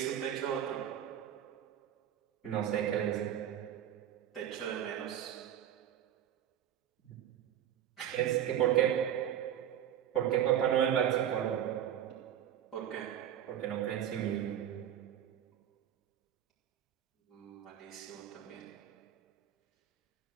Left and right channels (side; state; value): left; quieter; 10.5 dB